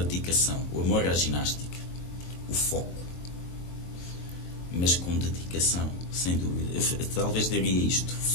dedicação, o amor à ginástica, o foco. Mas com dedicação, sem dúvida. Eu talvez diria isto:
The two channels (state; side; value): late; right; 23 ms